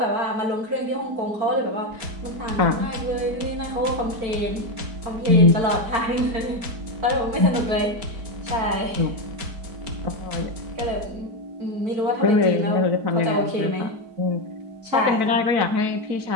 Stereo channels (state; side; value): late; left; 4.6 ms